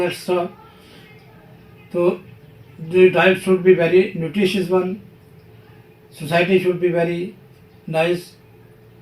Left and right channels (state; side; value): identical; both; correlation 1.00